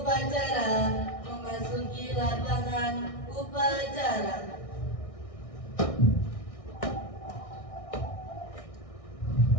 memasuki lapangan upacara.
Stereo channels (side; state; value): right; late; 1.6 ms